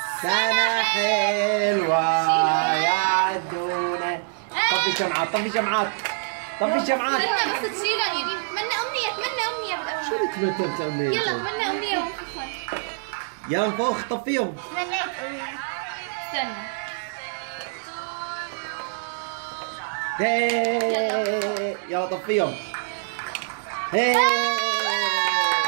سنة حلوة يا عدونة. طفي شمعات، طفي شمعات، طفي شمعات. بس تشيلها يا ريم. تمنى أمنية، تمنى أمنية بالأول. شو اللي تمنيت أمنية؟ يلا تمنى أمنية ونفخها. يلا نفخ، طفيهم. تمنيت أمنية. استنى. يلا طفيهم. يلا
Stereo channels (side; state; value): left; silent; digital silence